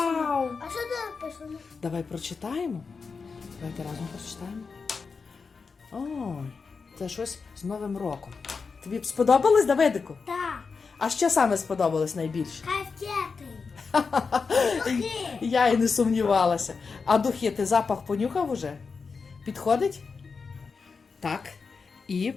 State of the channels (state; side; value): quieter; right; 5.0 dB